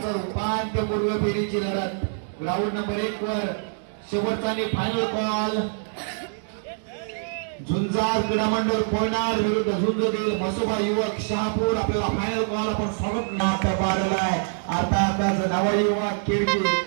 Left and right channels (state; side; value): silent; left; digital silence